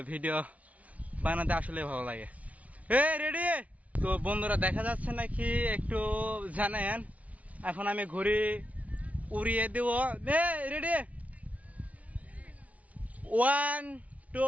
ভিডিও বানাতে আসলে ভালো লাগে। রেডি? তো বন্ধুরা দেখা যাচ্ছে নাকি একটু জানেন, এখন আমি ঘুড়ি উড়িয়ে দেব। রেডি? 1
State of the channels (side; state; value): left; late; 0.068 ms